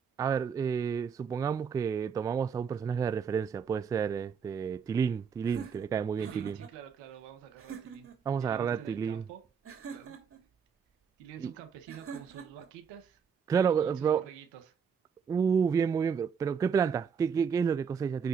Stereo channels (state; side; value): quieter; left; 6.6 dB